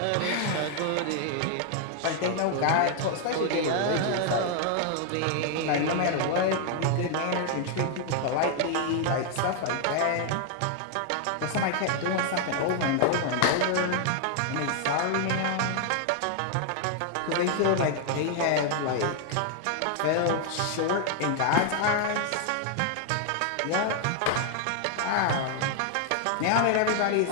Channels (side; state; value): both; different; correlation 0.00